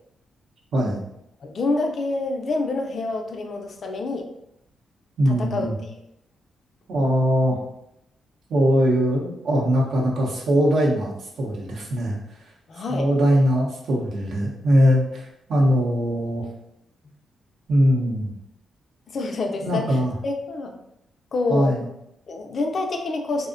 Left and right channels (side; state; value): both; normal; correlation 0.85